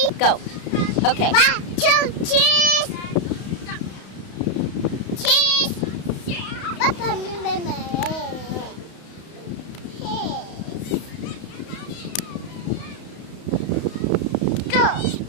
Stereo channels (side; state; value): right; late; 31 ms